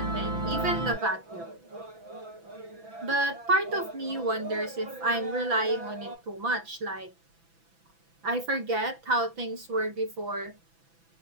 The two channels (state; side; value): late; left; 6.0 ms